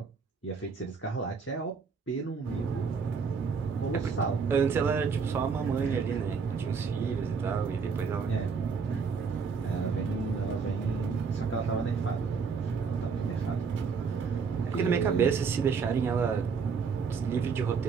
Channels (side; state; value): left; quieter; 5.5 dB